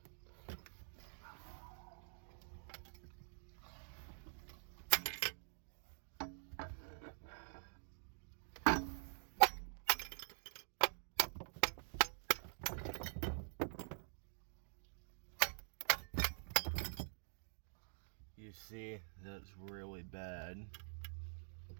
You see, that's really bad.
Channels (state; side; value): silent; left; digital silence